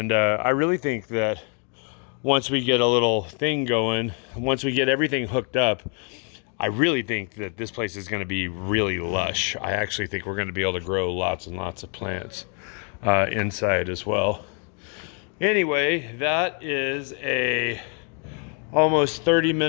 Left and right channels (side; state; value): right; quieter; 39.7 dB